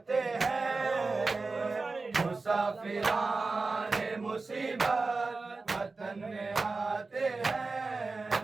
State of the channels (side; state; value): left; quieter; 3.8 dB